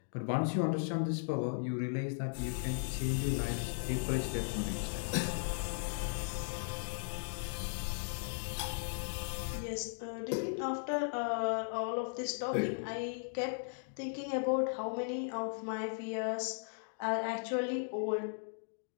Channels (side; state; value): right; silent; digital silence